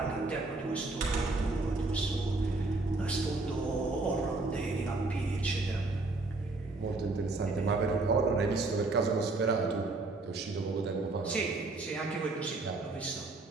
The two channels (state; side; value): quieter; left; 3.3 dB